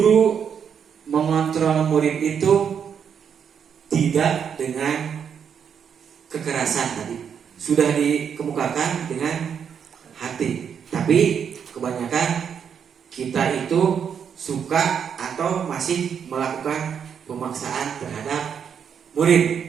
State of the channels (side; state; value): left; quieter; 7.5 dB